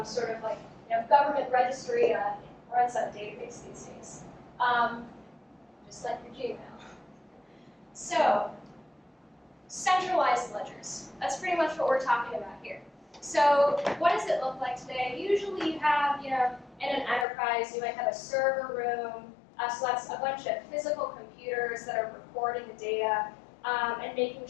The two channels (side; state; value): right; drops out; at 17.2 s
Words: sort of like government registry runs on a database these days. Just like your Gmail. So, centralized ledgers. That's pretty much what we're talking about here. So, what does it look like today? Usually you have, in an enterprise, you might have a server room. So that's a bunch of physical computers that are recording the data and making